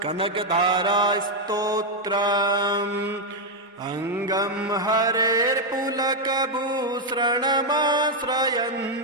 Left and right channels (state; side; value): normal; both; correlation 0.01